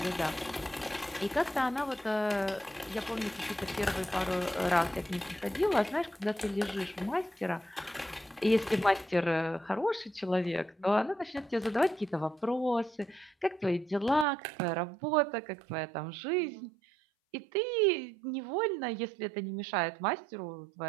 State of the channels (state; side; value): drops out; left; at 14.2 s